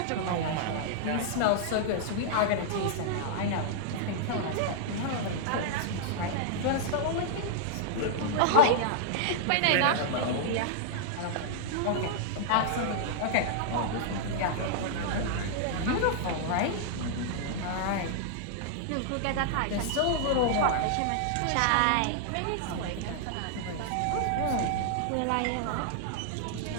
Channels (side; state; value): both; different; correlation -0.01